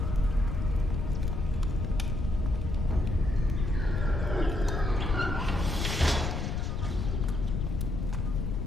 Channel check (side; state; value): left; noise; rumble, 1 dB below the sound